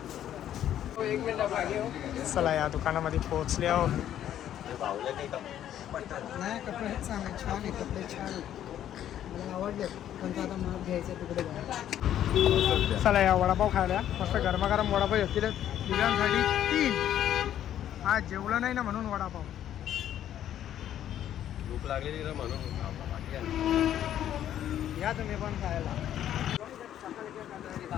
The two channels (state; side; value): quieter; right; 11.1 dB